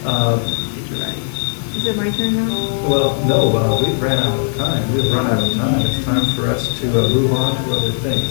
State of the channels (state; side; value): silent; right; 59 dB below the other